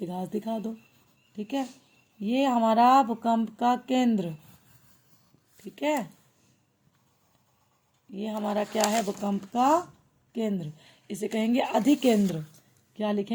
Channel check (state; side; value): identical; both; correlation 1.00